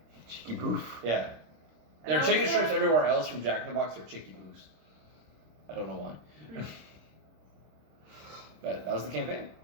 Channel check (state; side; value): late; left; 26 ms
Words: Cheeky boof. Yeah. There are And chicken also- strips everywhere else from Jack in the Box. They're chicky booths. I don't know why. But that was the campaign.